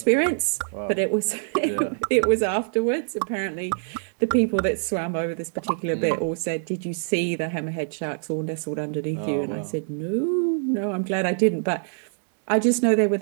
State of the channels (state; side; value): silent; left; digital silence